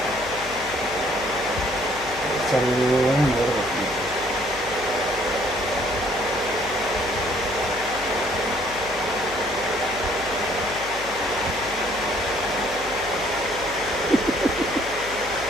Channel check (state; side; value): noise; left; hum, 16 dB below the sound